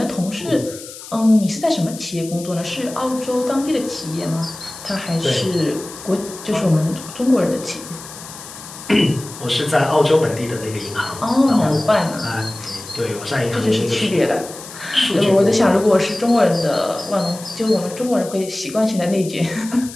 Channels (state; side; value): noise; left; hiss, 14 dB below the sound